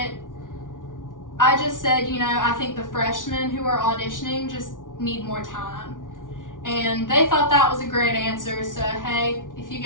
I just said, I think the freshmen who are auditioning just need more time. And they thought that was a great answer, so hey, if you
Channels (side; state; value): right; late; 0.88 ms